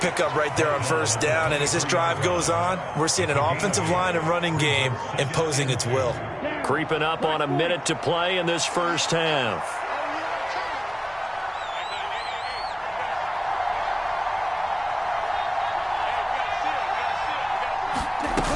right there on first down. And as this drive goes on, we're seeing an offensive line and running game imposing its will. Creeping up on a minute to play in this first half.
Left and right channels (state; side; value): identical; both; correlation 1.00